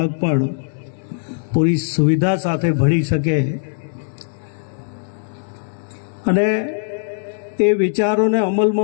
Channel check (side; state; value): right; silent; digital silence